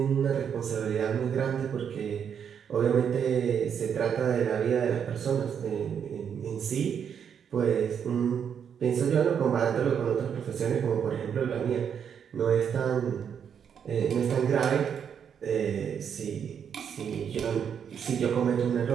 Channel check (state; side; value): quieter; left; 7.8 dB